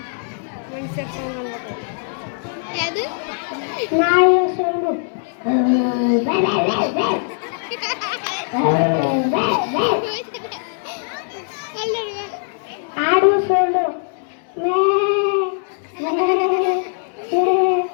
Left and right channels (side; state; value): right; silent; digital silence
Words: ನಾಯಿಯ ಸೋಡು, ಆಡು ಸೋಡು,